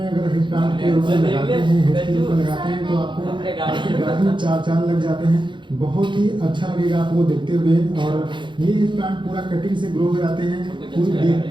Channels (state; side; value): late; left; 0.23 ms